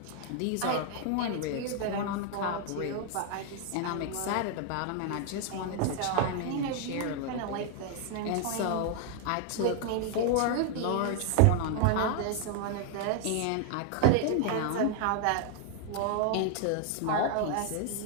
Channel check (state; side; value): different; both; correlation 0.00